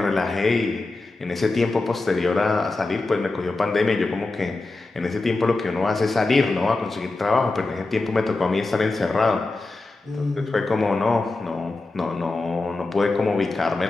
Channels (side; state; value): right; quieter; 3.3 dB